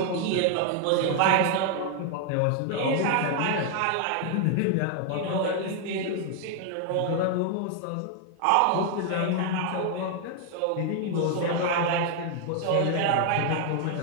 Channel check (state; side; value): different; both; correlation 0.00